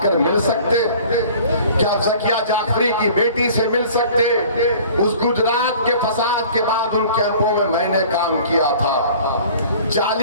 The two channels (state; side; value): inverted; both; correlation -0.47